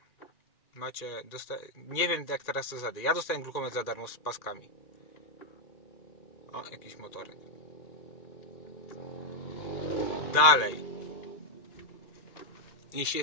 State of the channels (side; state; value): right; late; 2.4 ms